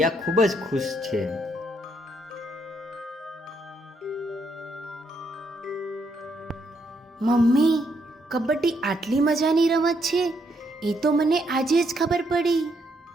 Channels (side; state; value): both; normal; correlation 0.75